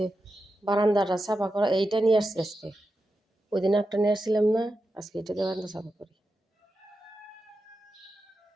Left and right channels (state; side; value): normal; both; correlation 0.89